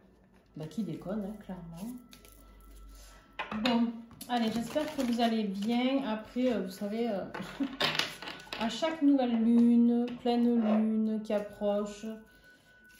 déconne, hein, clairement. Bon, allez, j'espère que vous allez bien. Après, vous savez, à chaque nouvelle lune, pleine lune qui approche,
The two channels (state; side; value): identical; both; correlation 1.00